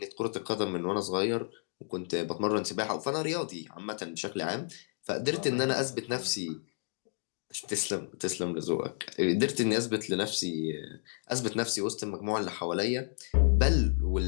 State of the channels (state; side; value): silent; right; digital silence